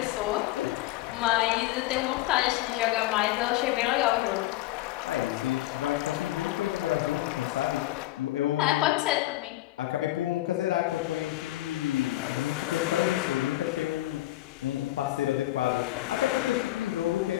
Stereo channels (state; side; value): quieter; right; 16.5 dB